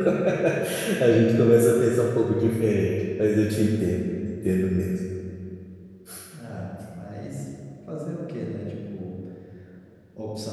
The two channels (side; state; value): both; identical; correlation 1.00